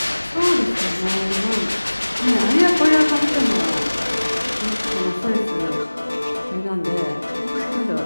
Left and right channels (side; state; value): both; inverted; correlation -1.00